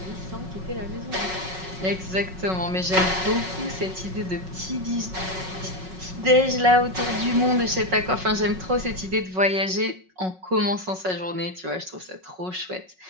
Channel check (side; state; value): left; late; 5.4 ms